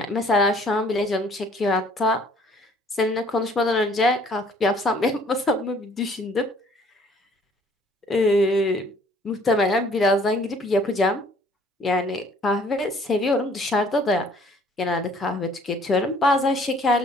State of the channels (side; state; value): both; normal; correlation 0.58